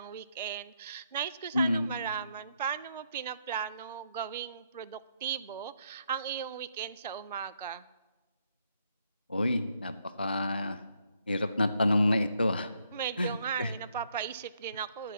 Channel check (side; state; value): both; inverted; correlation -0.75